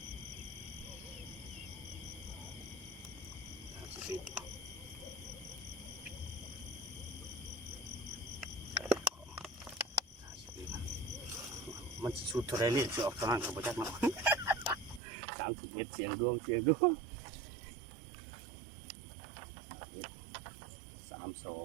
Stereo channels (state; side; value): drops out; left; at 15.0 s